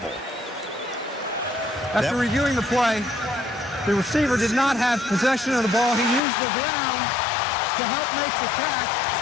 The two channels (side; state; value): right; drops out; at 6.2 s